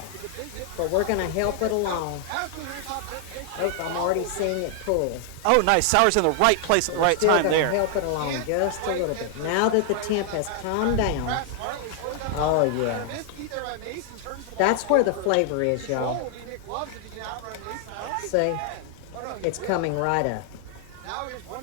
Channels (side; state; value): both; different; correlation 0.00